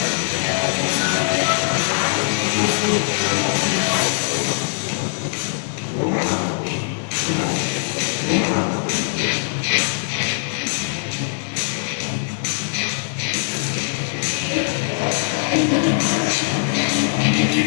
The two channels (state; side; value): silent; right; digital silence